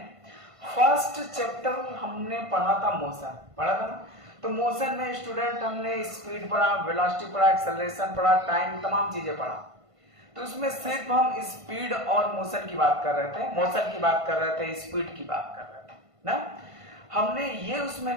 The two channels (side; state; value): left; late; 1.5 ms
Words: first chapter हमने पढ़ा था मोशन, पढ़ा था ना? तो मोशन में स्टूडेंट हमने स्पीड पढ़ा, वेलोसिटी पढ़ा, एक्सेलरेशन पढ़ा, टाइम, तमाम चीजें पढ़ा। तो उसमें सिर्फ हम स्पीड और मोशन की बात कर रहे थे, मोशन की बात कर रहे थे, स्पीड की बात कर रहे थे ना। हमने ये उसमें